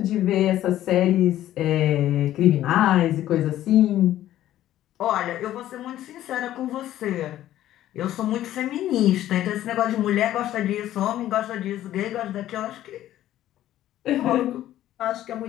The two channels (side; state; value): right; quieter; 13.1 dB